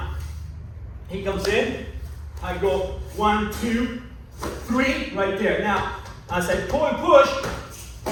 He comes in, I go 1, 2, 3, right there. Now, as I pull and push,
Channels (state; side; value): identical; both; correlation 1.00